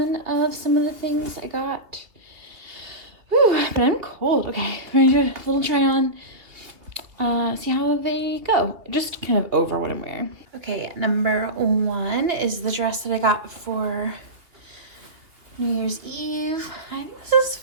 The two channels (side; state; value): left; late; 2.8 ms